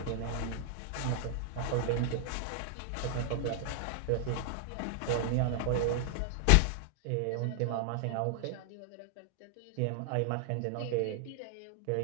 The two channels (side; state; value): both; different; correlation 0.00